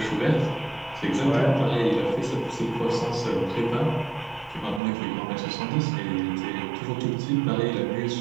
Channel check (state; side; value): drops out; left; at 4.8 s